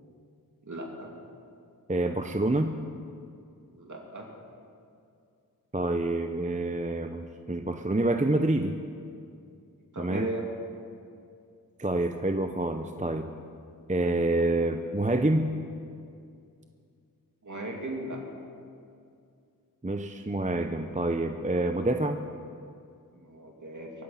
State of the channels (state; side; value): normal; both; correlation 0.63